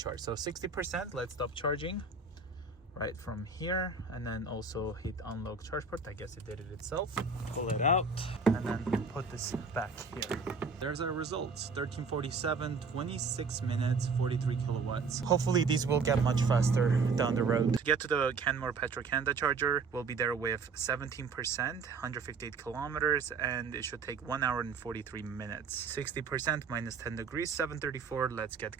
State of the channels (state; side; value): quieter; left; 4.6 dB